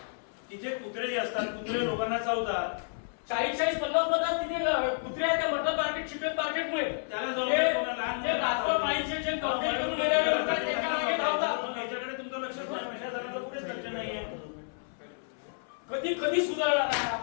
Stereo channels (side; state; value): right; silent; 58 dB below the other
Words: कुत्रे जे असतात, कुत्रे लोकांना चावतात. 40-50 तिथे कुत्रे आहेत त्या मटन मार्केट, चिकन मार्केटमुळे त्याला पाळीचे जे कंप्लेंट करून गेलेले लोक आहेत त्यांच्या मागे धावतात. याच्याकडे तुमचं लक्ष नाही, प्रशासनाचं कुठेच लक्ष नाहीये. कधी कधी सुधारणार आहे